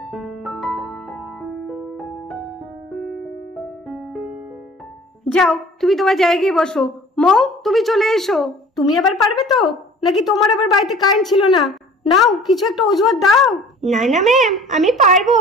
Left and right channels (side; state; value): both; normal; correlation 0.48